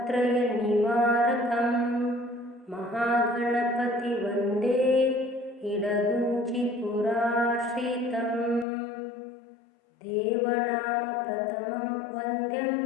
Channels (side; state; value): right; drops out; at 8.7 s